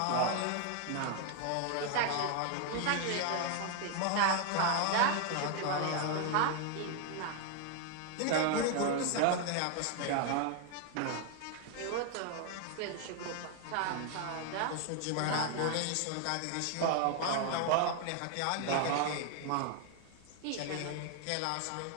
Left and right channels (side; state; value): both; different; correlation 0.01